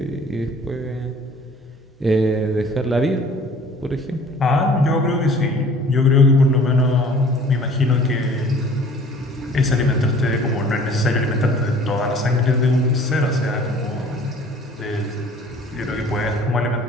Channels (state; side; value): normal; both; correlation 0.51